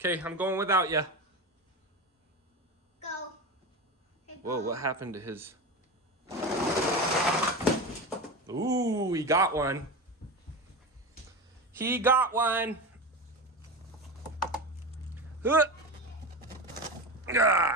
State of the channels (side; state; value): both; normal; correlation 0.23